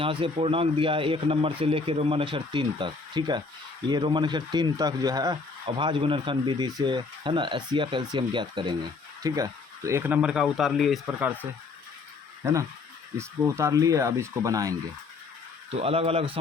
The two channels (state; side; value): quieter; right; 4.2 dB